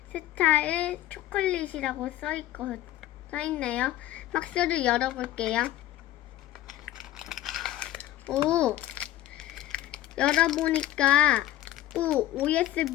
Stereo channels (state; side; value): quieter; right; 14.3 dB